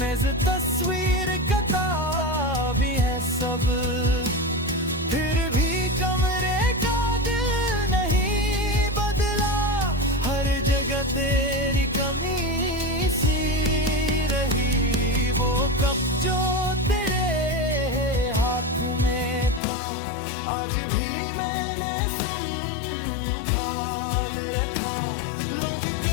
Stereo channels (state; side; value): drops out; right; at 19.6 s